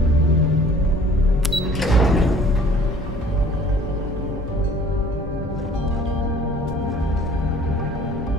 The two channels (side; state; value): both; normal; correlation 0.51